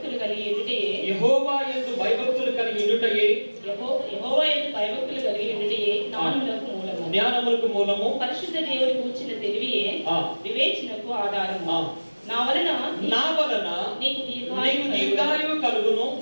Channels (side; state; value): both; inverted; correlation -1.00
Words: కలిగి ఉండుటయే జ్ఞానములకు మూలము. పరిశుద్ధ దేవుని కూర్చిన తెలివియే వివేచనకు ఆధారము. నా వలన నీకు దీర్ఘాయువు కలుగును.